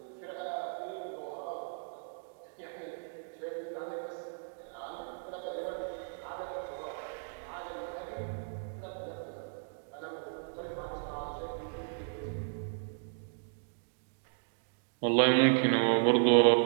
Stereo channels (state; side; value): silent; left; digital silence